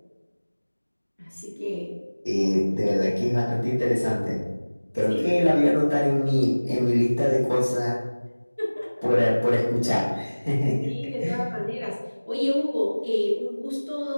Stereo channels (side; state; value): both; inverted; correlation -1.00